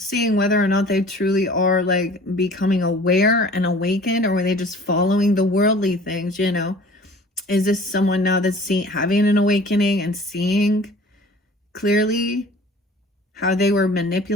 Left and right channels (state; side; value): normal; both; correlation 0.47